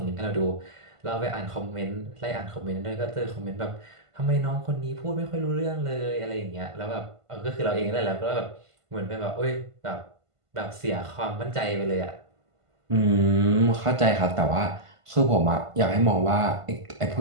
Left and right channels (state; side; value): late; left; 1.5 ms